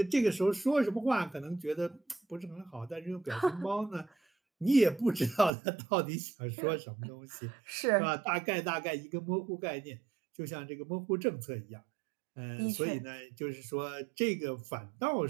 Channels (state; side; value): drops out; left; at 5.5 s